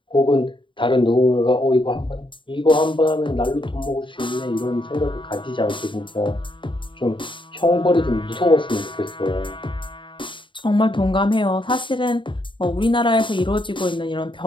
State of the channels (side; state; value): right; late; 0.24 ms